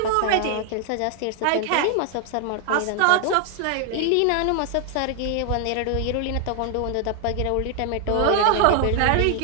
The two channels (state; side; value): different; both; correlation 0.00